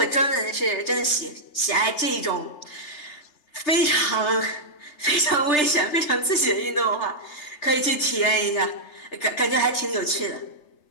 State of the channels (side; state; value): right; late; 3.3 ms